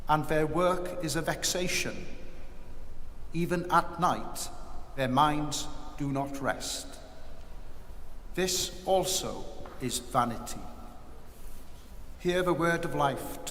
and their work is a vexation. Even at night their minds do not rest. This also is vanity. Hear the word of life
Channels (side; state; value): both; identical; correlation 1.00